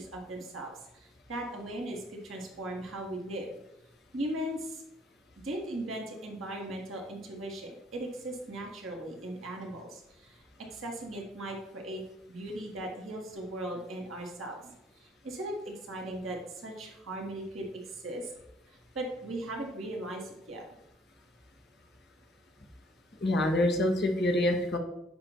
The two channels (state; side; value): normal; both; correlation 0.61